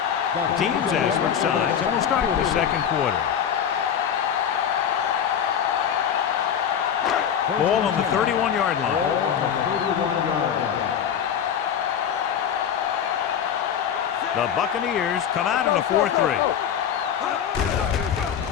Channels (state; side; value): quieter; right; 8.5 dB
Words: The teams as switch sides, and we'll start with the second quarter. Ball on the 31-yard line. Ball on the 31-yard line. The Buccaneers come out in a 4-3.